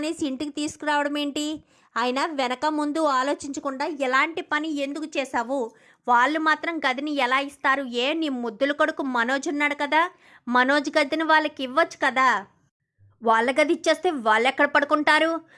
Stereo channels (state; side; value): identical; both; correlation 1.00